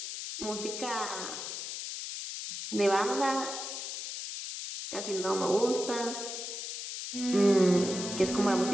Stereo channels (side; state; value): left; noise; hiss, 6 dB below the sound